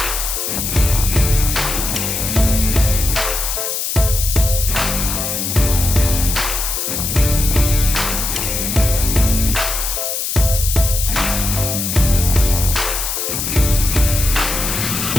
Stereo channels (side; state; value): left; noise; hiss, 2 dB below the sound